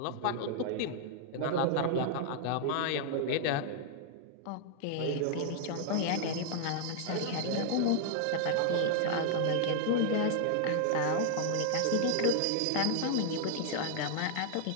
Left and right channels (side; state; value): both; different; correlation 0.00